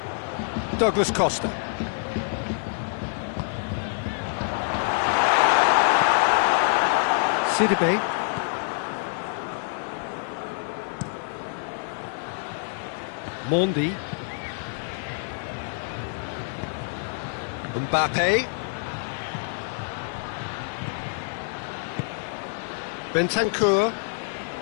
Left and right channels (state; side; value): silent; right; digital silence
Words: Douglas Costa. Sidibe. Mondi. Mbappe. Bentancur.